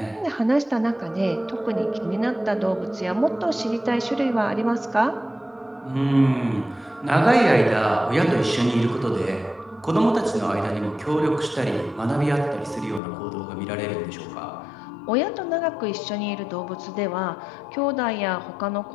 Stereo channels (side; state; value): right; drops out; at 13.0 s